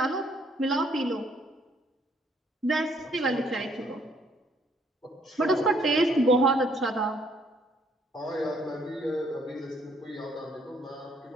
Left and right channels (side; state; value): both; normal; correlation 0.66